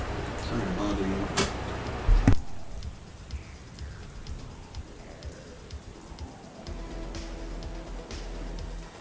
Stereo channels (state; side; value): identical; both; correlation 1.00